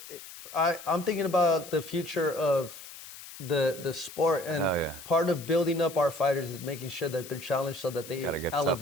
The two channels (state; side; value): noise; left; hiss, 15 dB below the sound